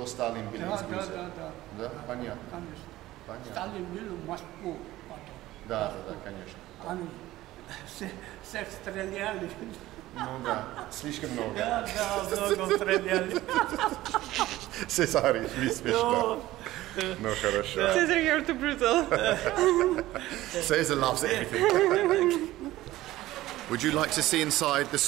Сталин был из Грузии. Да, понятно. Конечно. Сталин был в Москву потом. Да, конечно. Они всех стреляли. Ну да, слишком много. Да, много стреляли. Cesare, смешно. Ну хорошо. Caesar, you're too brutal. Caesar loves everything. Would you like to see inside the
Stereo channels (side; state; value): left; quieter; 16.2 dB